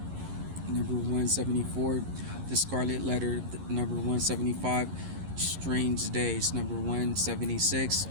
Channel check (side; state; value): left; late; 11 ms